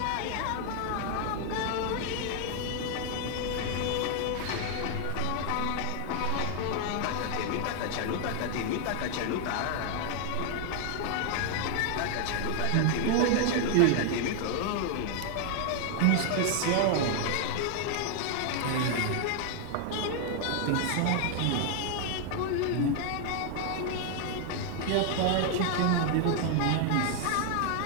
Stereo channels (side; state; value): both; different; correlation 0.00